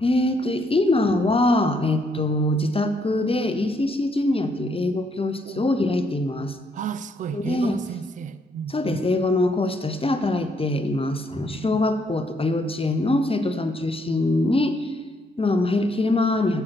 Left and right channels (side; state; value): both; normal; correlation 0.72